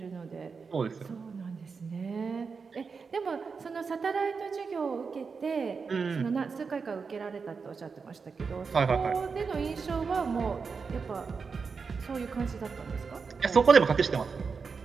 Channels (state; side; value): quieter; left; 5.2 dB